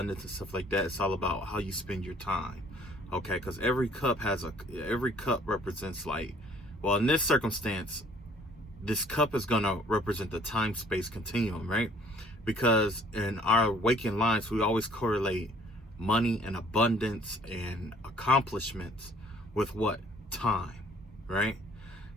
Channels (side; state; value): both; normal; correlation 0.57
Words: and stuff like that, it's all about how you spend your time. Okay, because every cup represents, like, well, in this circumstance, this cup is going to represent the time-space continuum, right? Because in our waking lives, we always correlate money and abundance and accomplishments with what? Time, right?